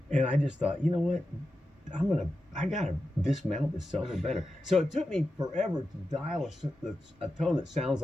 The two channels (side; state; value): both; normal; correlation 0.90